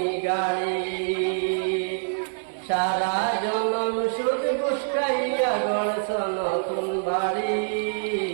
গাড়ি। সারা জনম সুদ বুসকাইয়া গড়ছ নতুন বাড়ি,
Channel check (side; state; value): left; silent; 55 dB below the other